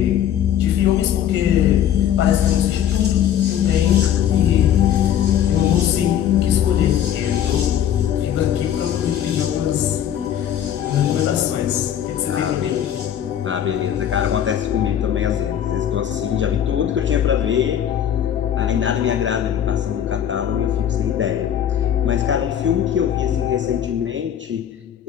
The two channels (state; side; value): quieter; right; 10.1 dB